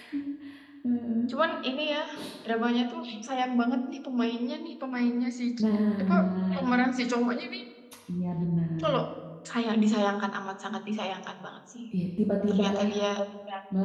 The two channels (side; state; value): both; identical; correlation 1.00